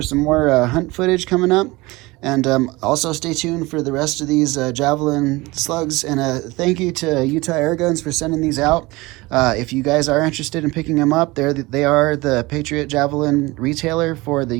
some more hunt footage coming up. And also stay tuned for the rest of these Javelin slugs. And thank you to Utah Air Guns for sending these out. If you guys are interested in picking them up, they are the Patriot Javelin retailer for the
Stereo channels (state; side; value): quieter; left; 22.0 dB